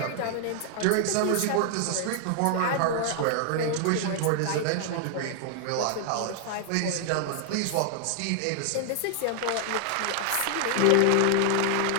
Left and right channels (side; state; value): both; different; correlation 0.00